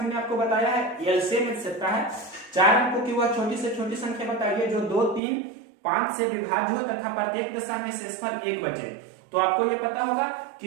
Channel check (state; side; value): drops out; left; at 5.2 s